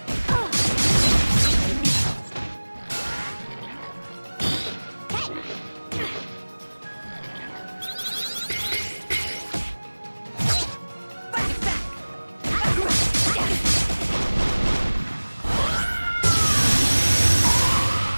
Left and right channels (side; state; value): both; inverted; correlation -1.00